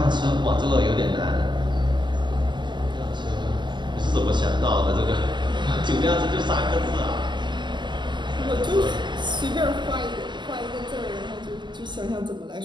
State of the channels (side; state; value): left; late; 0.22 ms